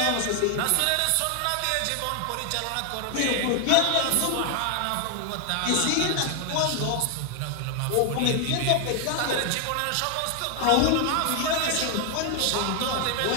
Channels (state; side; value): different; both; correlation 0.00